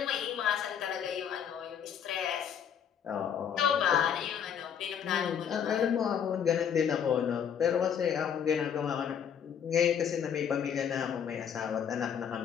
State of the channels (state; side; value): quieter; right; 8.2 dB